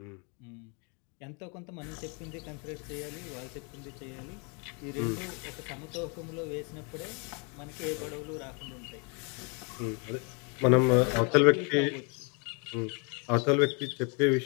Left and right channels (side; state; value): right; quieter; 34.9 dB